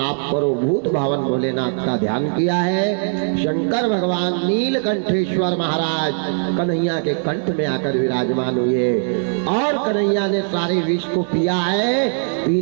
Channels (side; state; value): left; silent; digital silence